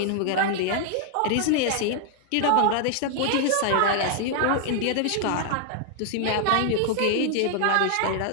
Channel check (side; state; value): both; different; correlation 0.00